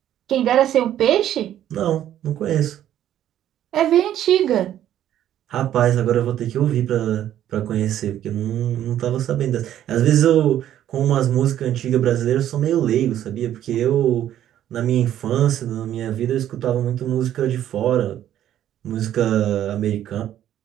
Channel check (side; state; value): left; quieter; 11.5 dB